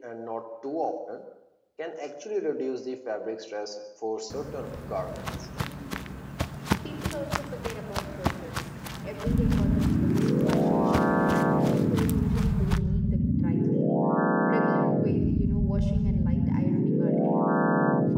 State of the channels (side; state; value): both; identical; correlation 1.00